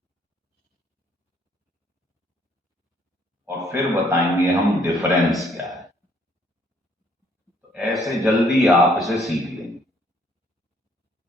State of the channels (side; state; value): both; normal; correlation 0.65